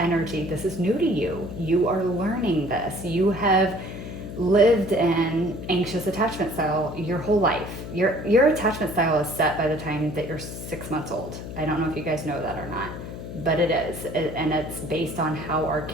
This is new to you. You are learning this. You have lived in anxious attachment style your whole life. Your attachment style is set by the time that you're 6 months old. I don't know if you guys know that or not, but it is. And it's based on how our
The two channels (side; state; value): left; noise; hum, 9 dB below the sound